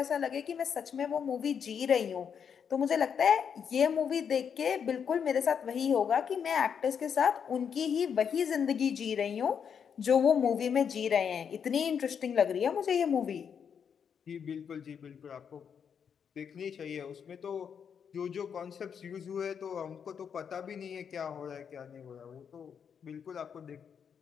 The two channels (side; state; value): right; quieter; 7.3 dB